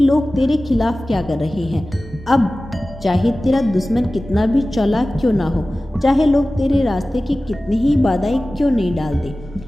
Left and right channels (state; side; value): normal; both; correlation 0.96